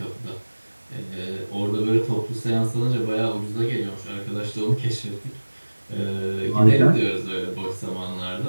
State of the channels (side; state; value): both; inverted; correlation -1.00